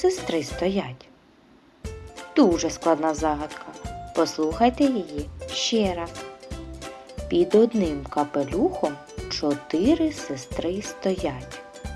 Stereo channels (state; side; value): identical; both; correlation 1.00